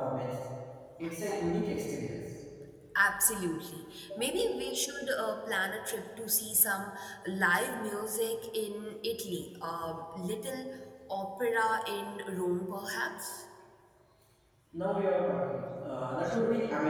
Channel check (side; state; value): both; identical; correlation 1.00